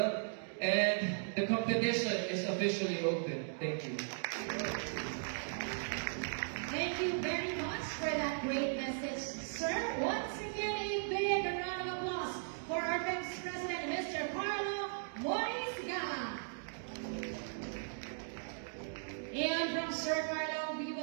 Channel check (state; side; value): silent; left; digital silence